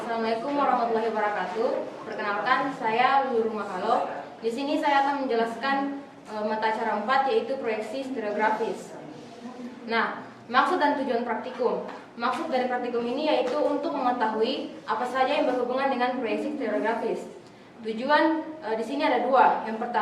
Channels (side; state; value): both; identical; correlation 1.00